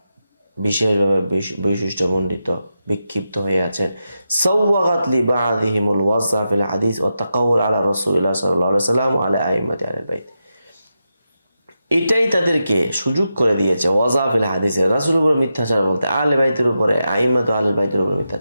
বিশেষভাবে বৈশিষ্ট্যমণ্ডিত বিক্ষিপ্ত হয়ে আছেন, সাওয়াগাত লিবা'দিহিমুল ওয়াজা ফিল হাদিস ওয়া তাকাউল আলা রাসূলিল্লাহ সাল্লাল্লাহু আলাইহি ওয়াসাল্লাম ওয়া আলা আইম্মাতি আহলিল বাইত, এটাই তাদেরকে সুযোগ করে দিয়েছে ওয়াজা ফিল হাদিসে, রাসূলের উপর মিথ্যাচার বলতে, আহলে বাইতের উপরে আইম্মাতু আহলিল বাইতের উপর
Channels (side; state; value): both; inverted; correlation -0.88